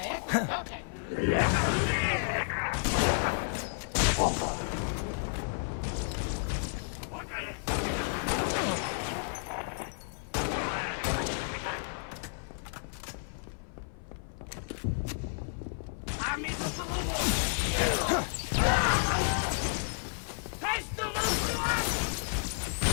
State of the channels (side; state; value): right; silent; 57 dB below the other